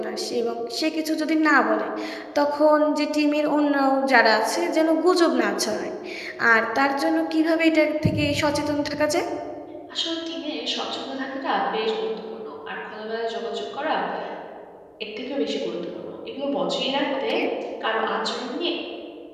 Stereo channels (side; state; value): both; identical; correlation 1.00